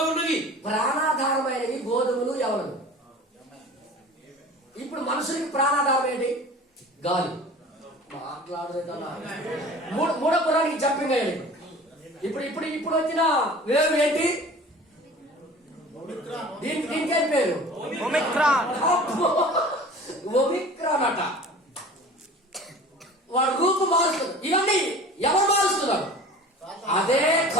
ఉన్నవి. ప్రాణాధారమైనవి గోధుమలు ఎవరు. ఇప్పుడు మనుషులకి ప్రాణాధారం ఏంటి? గాలి. మాట్లాడలేదన్నా మూడో పురానికి జంపింగ్ అయ్యాడు. ఇప్పుడు ఇప్పుడు ఇప్పుడు వచ్చిన వేవ్ ఏంటి? దీనికి ఏం పేరు? ఒమిక్రాన్. ఒమిక్రాన్ అట. వాడు రూపు మారుస్తుంది. ఇవన్నీ ఎవరు మారుస్తున్నారు? అదే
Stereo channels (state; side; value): normal; both; correlation 0.42